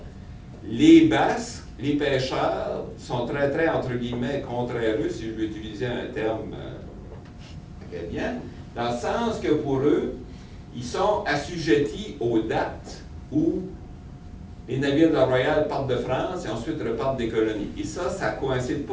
Les Basques, les pêcheurs, sont très, très, entre guillemets, contraireux, si je veux utiliser un terme acadien, dans le sens que pour eux, ils sont assujettis aux dates où les navires de la Royale partent de France et ensuite repartent des colonies. Et ça ne coïncide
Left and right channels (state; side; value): identical; both; correlation 1.00